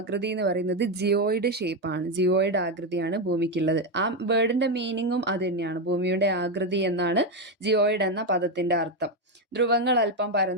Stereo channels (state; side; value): normal; both; correlation 0.08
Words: എന്ന് പറയുന്നത് ജിയോയിഡ് ഷേപ്പാണ്. ജിയോയിഡ് ആകൃതിയാണ് ഭൂമിക്കുള്ളത്. ആ വേർഡിന്റെ മീനിങ്ങും അത് തന്നെയാണ്. ഭൂമിയുടെ ആകൃതി എന്നാണ് ജിയോയിഡ് എന്ന പദത്തിന്റെ അർത്ഥം. ധ്രുവങ്ങൾ അല്പം